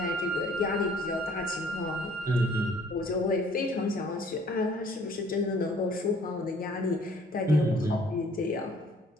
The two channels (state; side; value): normal; both; correlation 0.57